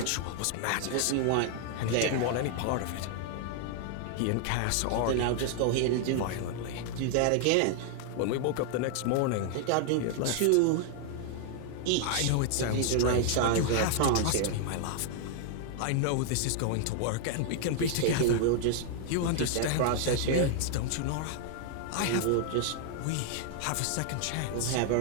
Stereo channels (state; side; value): different; both; correlation 0.00